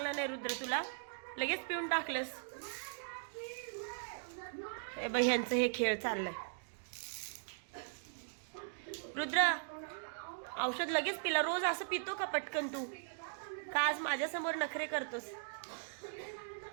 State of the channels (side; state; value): left; silent; digital silence